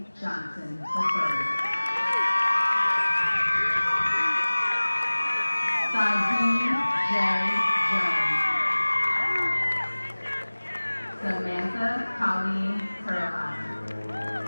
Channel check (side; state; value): both; inverted; correlation -1.00